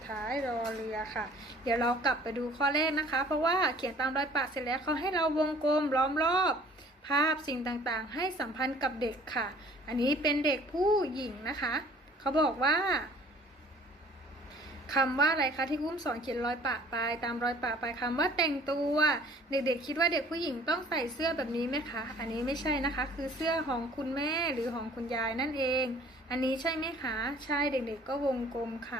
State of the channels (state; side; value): normal; both; correlation 0.52